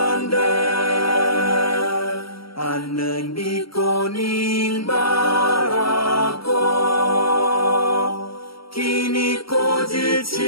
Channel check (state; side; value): late; right; 0.75 ms